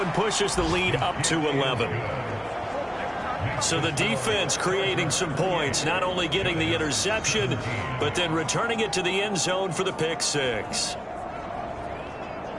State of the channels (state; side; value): identical; both; correlation 1.00